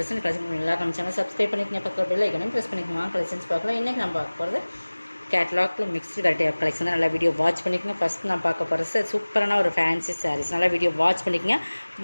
எல்லாரும் நம்ம சேனல் சப்ஸ்கிரைப் பண்ணிக்கங்க, பக்கத்தில் பெல் ஐக்கனையும் ப்ரெஸ் பண்ணிக்கோங்க. கலெக்ஷன்ஸ் பார்க்கலாம். இன்றைக்கி நம்ம பார்க்க போகிறது கேட்லாகில் மிக்ஸ்டு வெரைட்டி ஆஃப் கலெக்ஷன் தான். நல்லா வீடியோ வாட்ச் பண்ணிக்கோங்க. ஃபஸ்ட் நான் பார்க்க போகிறது சூப்பரான ஒரு ஃபேன்சி சாரீஸ். நல்லா வீடியோ வாட்ச் பண்ணிக்கோங்க.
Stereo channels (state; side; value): inverted; both; correlation -1.00